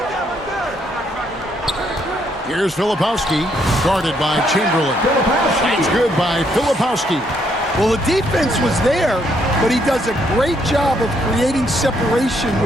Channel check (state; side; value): normal; both; correlation 0.72